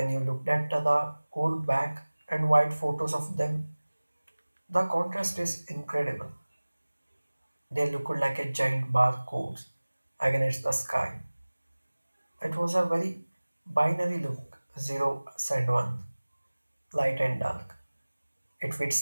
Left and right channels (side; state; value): both; inverted; correlation -1.00